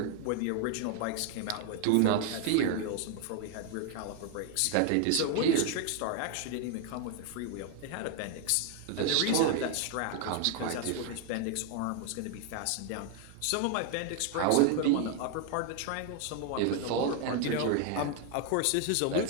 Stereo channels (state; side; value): different; both; correlation 0.01